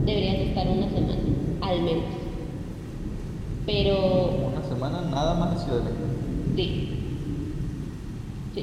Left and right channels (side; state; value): both; identical; correlation 1.00